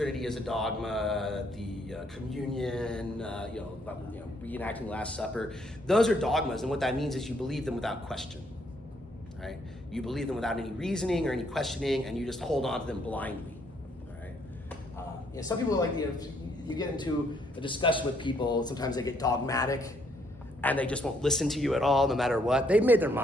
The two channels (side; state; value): both; normal; correlation 0.70